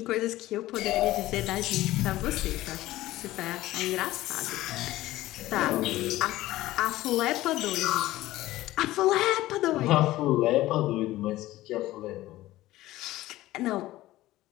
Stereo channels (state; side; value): quieter; right; 16.4 dB